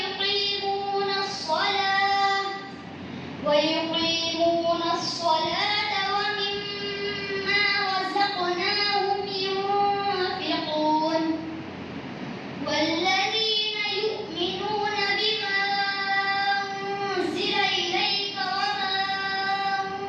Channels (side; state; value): both; identical; correlation 1.00